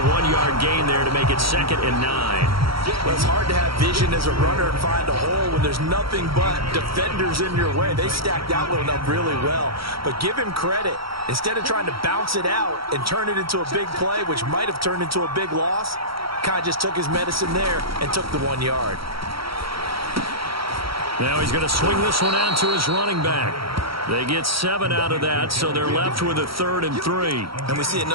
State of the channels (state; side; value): late; left; 0.75 ms